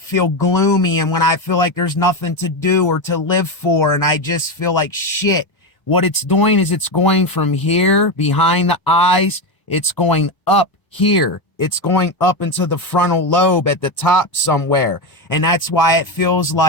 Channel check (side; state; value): right; late; 1.0 ms